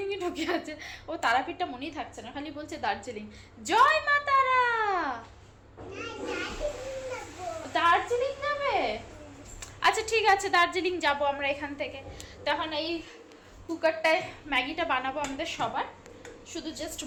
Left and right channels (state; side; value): identical; both; correlation 1.00